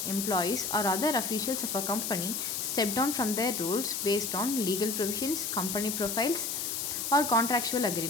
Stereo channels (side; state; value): left; noise; hiss, 2 dB below the sound